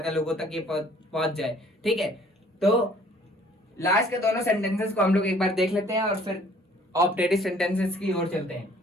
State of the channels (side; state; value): both; normal; correlation 0.57